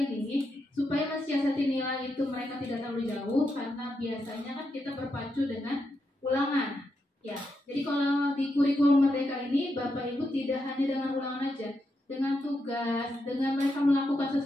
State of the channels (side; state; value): both; normal; correlation 0.84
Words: supaya mensiasati nilai itu mereka tidak terlalu jauh, karena biasanya kan kita berpacu dengan ulangan. Ya, jadi kalau di kurikulum mereka ini, Bapak Ibu tidak hanya dengan ulangan aja, dengan tugas, dengan mereka melakukan